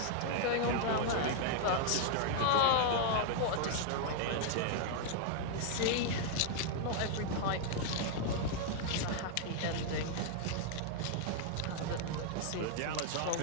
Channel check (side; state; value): both; different; correlation 0.00